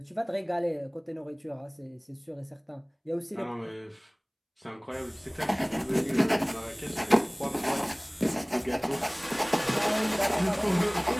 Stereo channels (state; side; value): identical; both; correlation 1.00